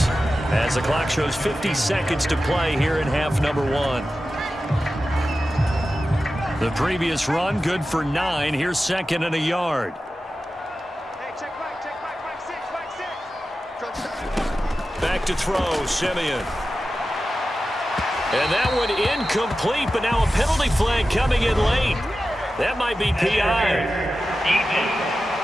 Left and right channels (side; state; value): both; normal; correlation 0.93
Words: as the clock shows 50 seconds to play here in half number 1. The previous run, good for 9. Here's 2nd and a yard. Hey, check back, 6. Back to throw, Simeon. And that one incomplete, but now a penalty flag coming in late. That might be PI.